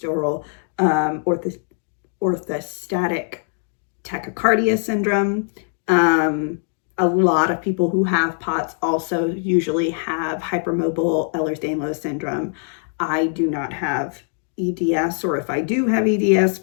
orthostatic tachycardia syndrome. A lot of people who have POTS also usually have hypermobile Ehlers-Danlos syndrome. I do not have EDS, or if I do have EDS,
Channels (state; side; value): silent; right; 58 dB below the other